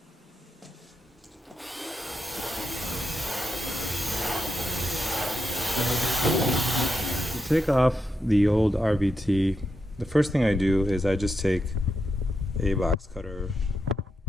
To take off the old RVT, the first thing I do is I just take a box cutter,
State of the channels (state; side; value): normal; both; correlation 0.86